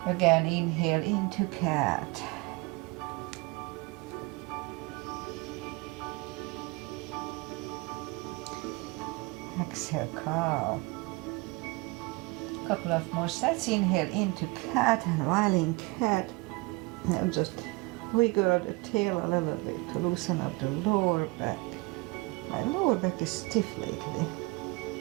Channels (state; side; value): quieter; left; 25.2 dB